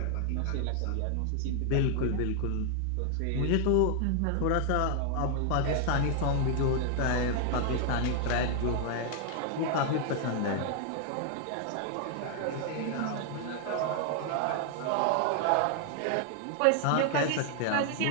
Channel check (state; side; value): different; both; correlation 0.00